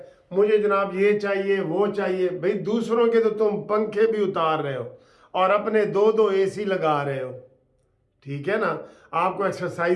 मुझे जनाब ये चाहिए वो चाहिए। भाई दूसरों के तो तुम पंखे भी उतार रहे हो और अपने दो एसी लगा रहे हो, ठीक है ना। आपको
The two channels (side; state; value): both; identical; correlation 1.00